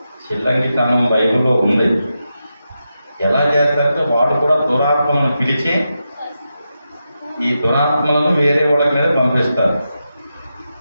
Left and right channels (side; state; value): both; inverted; correlation -0.88